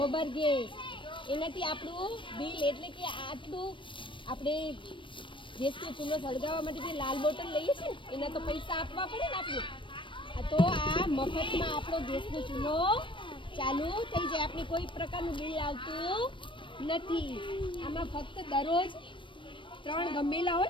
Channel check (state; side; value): late; right; 0.24 ms